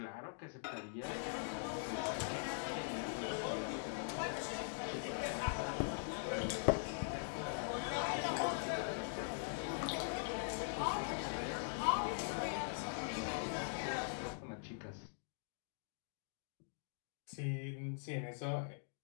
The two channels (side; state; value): right; silent; digital silence